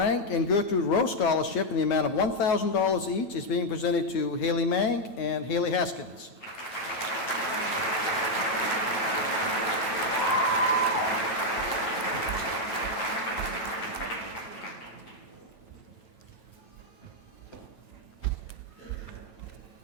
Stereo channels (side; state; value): right; late; 9.9 ms